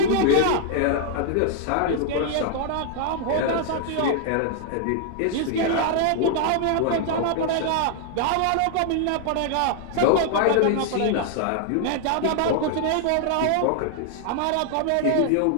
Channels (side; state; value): both; different; correlation 0.00